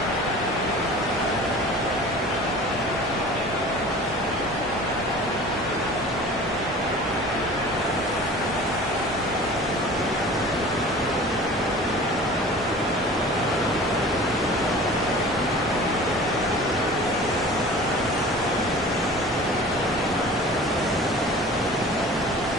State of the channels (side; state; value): both; normal; correlation 0.41